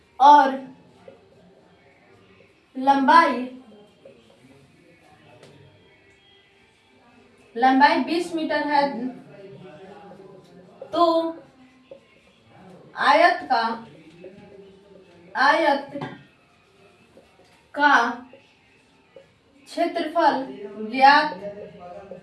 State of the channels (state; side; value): identical; both; correlation 1.00